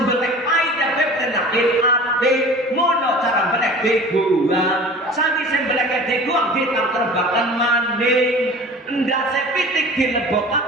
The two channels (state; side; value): normal; both; correlation 0.41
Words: belek pahit ya penyakit ati mono cara belek dibuang. Sangi sing belek dibuang ditangrebaken maning ndase pitik